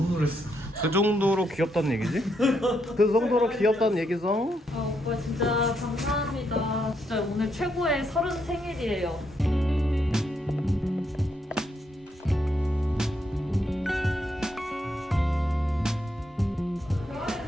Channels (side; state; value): both; normal; correlation 0.78